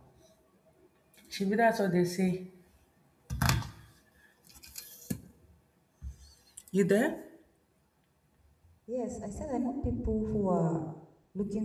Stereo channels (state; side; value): identical; both; correlation 1.00